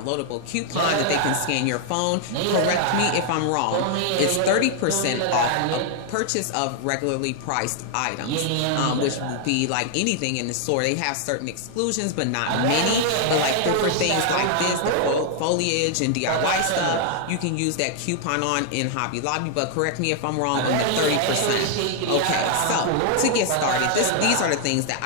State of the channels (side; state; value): both; different; correlation 0.00